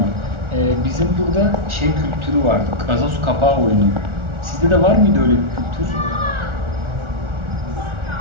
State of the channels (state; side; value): late; left; 1.4 ms